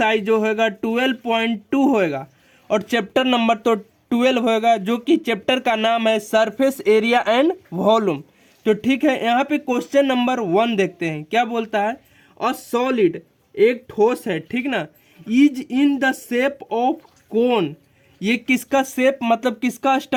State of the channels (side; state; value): both; identical; correlation 1.00